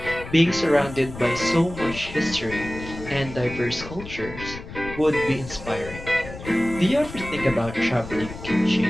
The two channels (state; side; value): noise; left; rumble, 12 dB below the sound